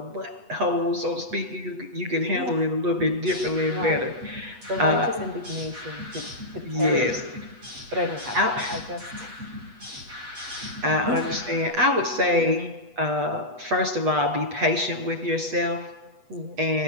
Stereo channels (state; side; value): late; left; 8.2 ms